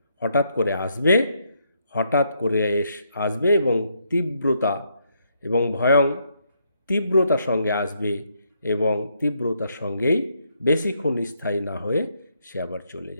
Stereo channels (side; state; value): both; inverted; correlation -0.75